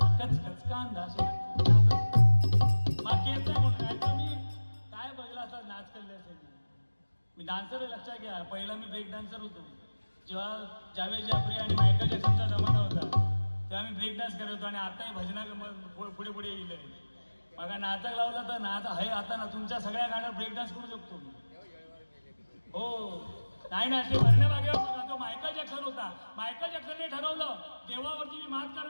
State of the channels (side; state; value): both; inverted; correlation -1.00